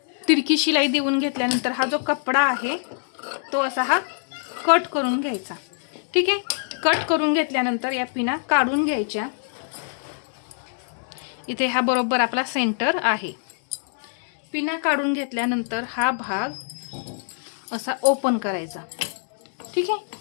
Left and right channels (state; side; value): silent; right; digital silence